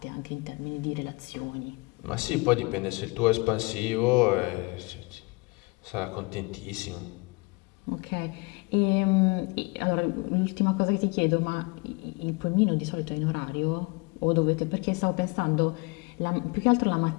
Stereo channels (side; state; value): right; quieter; 28.2 dB